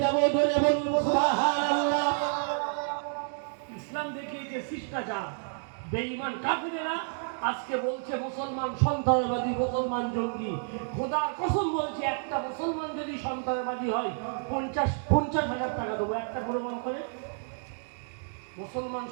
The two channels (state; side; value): silent; left; digital silence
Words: যাব। ধরে বলুন সুবহানাল্লাহ। ইসলাম দেখিয়েছে শিষ্টাচার। বেঈমান কাফেরেরা আজকে বলছে মুসলমান সন্ত্রাসবাদী, মুসলমান জঙ্গি। খোদার কসম বলছি, একটা মুসলমান যদি সন্ত্রাসবাদী হয় 50,000 টাকা দেবো, একটা প্রমাণ করে। মুসলমান